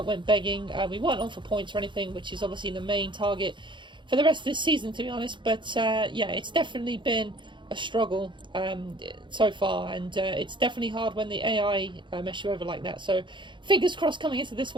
went begging. We weren't on for points or anything, which is obviously the main target for the rest of this season, to be honest. But, yeah, it's definitely been a struggle so far, and it's definitely hard when the AI mess you over like that. So fingers crossed coming into this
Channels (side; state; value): left; late; 0.23 ms